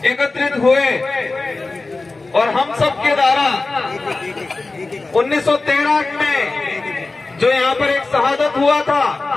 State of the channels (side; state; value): right; quieter; 3.5 dB